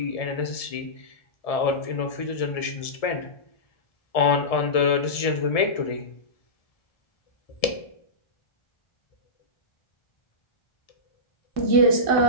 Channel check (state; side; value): late; right; 1.7 ms